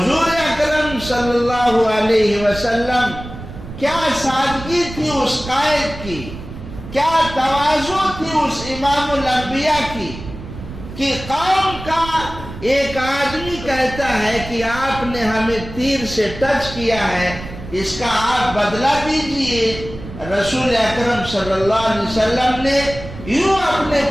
اکرم صلی اللہ علیہ وسلم، کیا سادگی تھی اس قائد کی، کیا تواضع تھی اس امام الانبیاء کی کہ قوم کا ایک آدمی کہتا ہے کہ آپ نے ہمیں تیر سے ٹچ کیا ہے، اس کا آپ بدلہ دیجئے۔ رسول اکرم صلی اللہ علیہ وسلم نے یوں اپنے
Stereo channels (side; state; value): right; noise; rumble, 12 dB below the sound